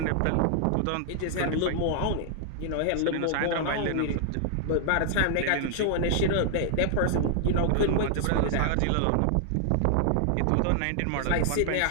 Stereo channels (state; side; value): different; both; correlation -0.01